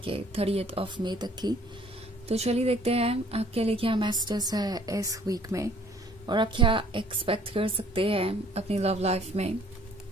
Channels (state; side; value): normal; both; correlation 0.58